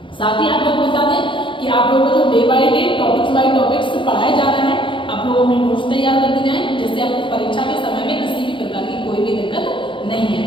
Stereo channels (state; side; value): late; right; 0.24 ms